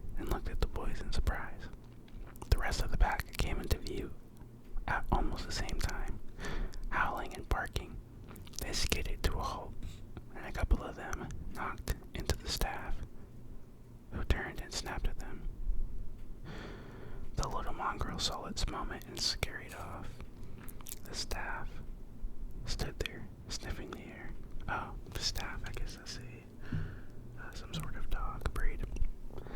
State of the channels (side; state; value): both; identical; correlation 1.00